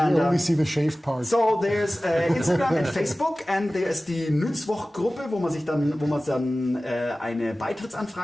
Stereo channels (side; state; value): both; normal; correlation 0.97